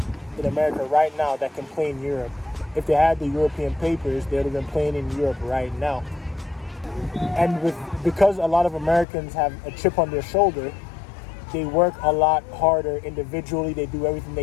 in America right now that can play in Europe. If they had the European papers, they would have been playing in Europe right now. And because a lot of Americans have a chip on their shoulder, they work a lot harder individually. They do everything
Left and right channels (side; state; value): right; drops out; at 9.1 s